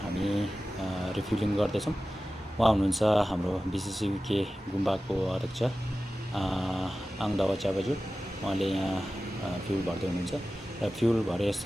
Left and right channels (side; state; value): both; normal; correlation 0.95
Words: हामी रिफ्युलिङ गर्दैछौँ। उहाँ हुनुहुन्छ हाम्रो बिसिसिके गुम्बाको अध्यक्ष आङदावा च्याबाजु। उहाँले यहाँ फ्युल भर्दै हुनुहुन्छ र फ्युल